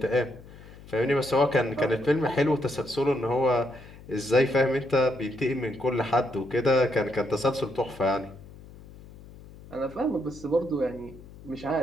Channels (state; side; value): noise; left; hum, 19 dB below the sound